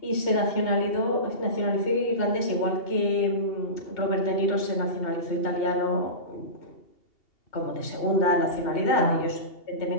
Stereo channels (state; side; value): late; right; 2.8 ms